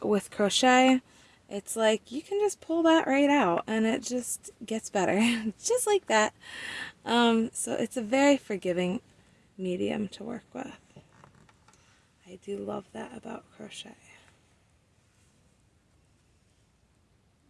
with crochet, it's you can just pull that right out and it just gets better. Just like that. So it's a very forgiving medium to work with. I do love that about crochet.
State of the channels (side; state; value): both; identical; correlation 1.00